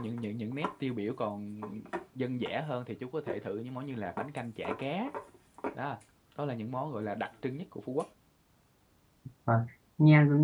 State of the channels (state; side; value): identical; both; correlation 1.00